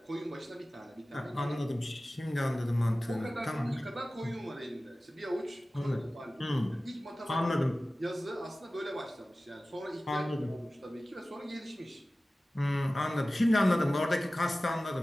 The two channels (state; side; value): normal; both; correlation 0.96